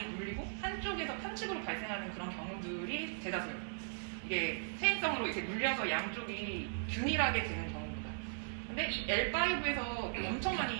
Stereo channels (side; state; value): left; silent; digital silence